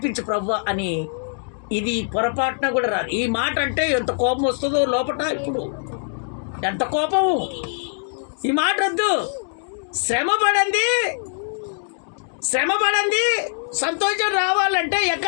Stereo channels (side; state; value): right; silent; digital silence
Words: ప్రభువా అని ఇది పొరపాటున కూడా రాదు. ఈ మాట అంటే ఎంత కోపం వస్తుందో లోపట. ఇప్పుడు ఎంత కోపము! ఈ మాట వద్దు. శ్రమ పడండి సంతోషం రావాలంటే